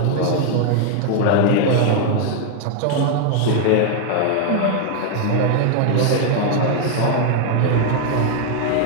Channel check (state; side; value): different; both; correlation 0.00